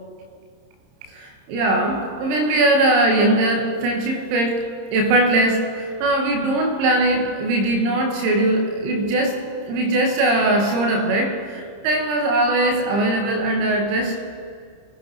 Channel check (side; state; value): left; late; 30 ms